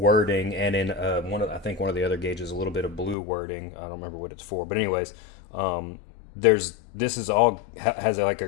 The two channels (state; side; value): drops out; right; at 3.2 s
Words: and in I think one of the other gauges a little bit of blue wording. I don't remember what it's for, but anyways, this is all has like